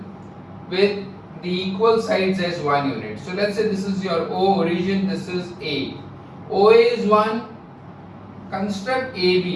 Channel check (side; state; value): both; identical; correlation 1.00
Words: with the equal sides as 1 unit. So let's say this is your O origin, this is A. OA is 1. Construct